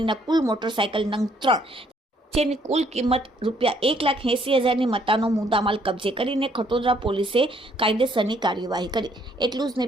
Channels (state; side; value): normal; both; correlation 0.66